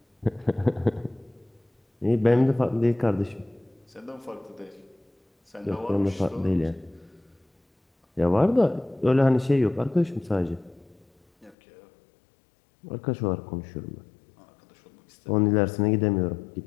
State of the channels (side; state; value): right; drops out; at 11.6 s